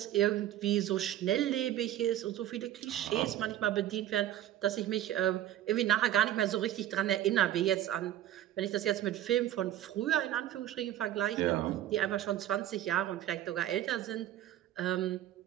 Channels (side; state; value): left; quieter; 12.6 dB